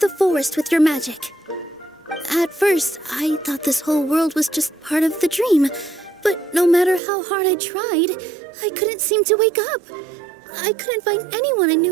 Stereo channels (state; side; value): drops out; left; at 7.0 s